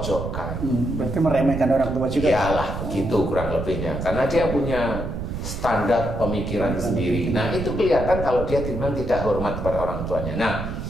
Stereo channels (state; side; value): noise; right; rumble, 6 dB below the sound